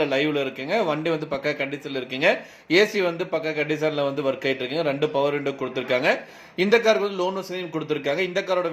லைவில் இருக்குங்க. வண்டி வந்து பக்கா கண்டிஷனில் இருக்குங்க. ஏசி வந்து பக்கா கண்டிஷனில் வந்து ஒர்க் ஆகிட்டு இருக்குங்க. 2 பவர் விண்டோ கொடுத்துருக்காங்க. இந்த காருக்கு வந்து லோன் வசதியும் கொடுத்துருக்காங்க. இந்த காரோட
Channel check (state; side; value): identical; both; correlation 1.00